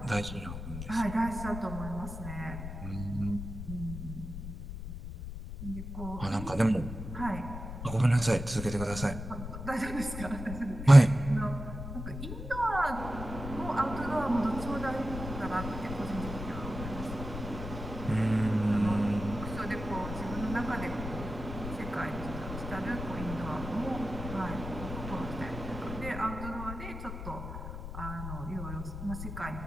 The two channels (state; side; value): noise; left; rumble, 8 dB below the sound